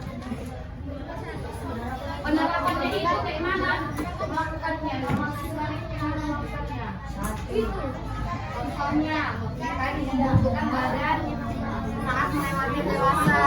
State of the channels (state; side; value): identical; both; correlation 1.00